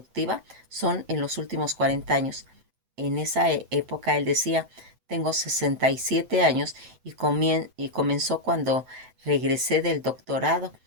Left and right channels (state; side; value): late; left; 7.9 ms